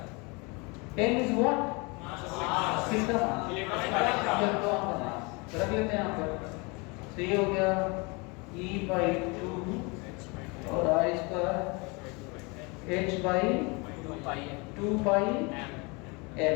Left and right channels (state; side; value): quieter; right; 28.9 dB